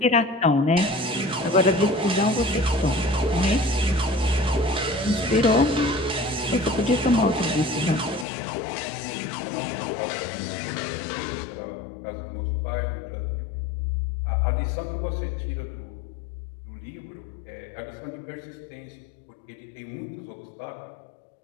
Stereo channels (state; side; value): drops out; right; at 8.2 s